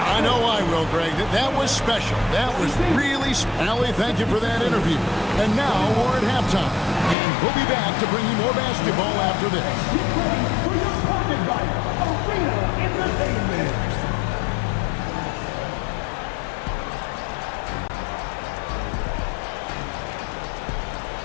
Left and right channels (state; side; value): drops out; right; at 7.2 s